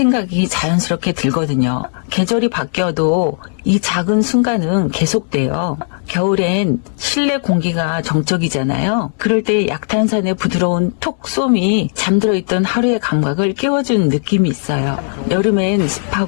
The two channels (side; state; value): right; silent; 66 dB below the other